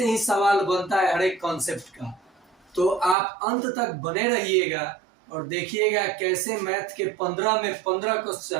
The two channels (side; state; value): left; drops out; at 3.2 s